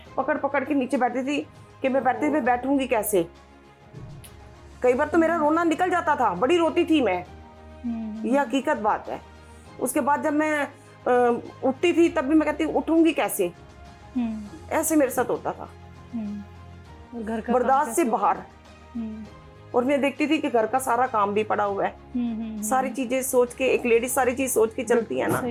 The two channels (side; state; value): both; identical; correlation 1.00